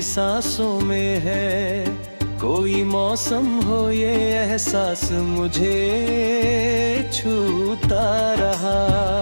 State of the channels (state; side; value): inverted; both; correlation -1.00